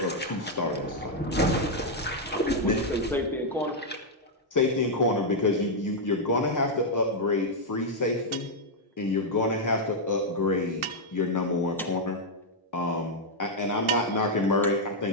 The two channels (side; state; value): both; normal; correlation -0.03